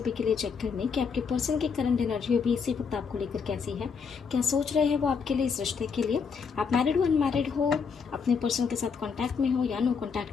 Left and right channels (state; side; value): quieter; right; 5.9 dB